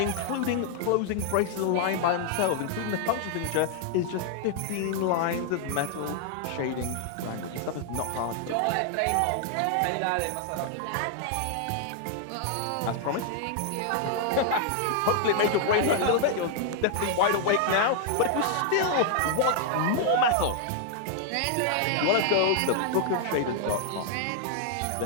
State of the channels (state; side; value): different; both; correlation 0.00